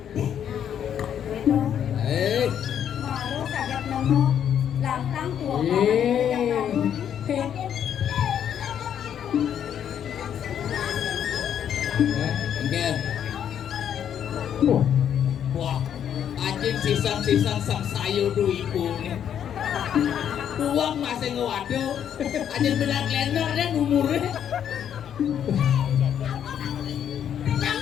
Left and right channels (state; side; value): quieter; right; 9.2 dB